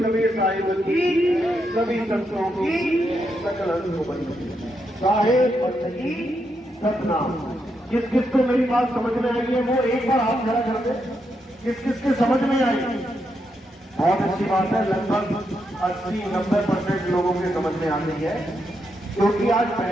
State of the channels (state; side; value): normal; both; correlation 0.82